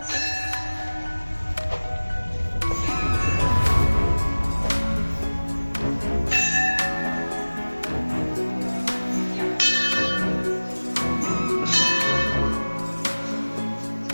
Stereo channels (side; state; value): both; inverted; correlation -1.00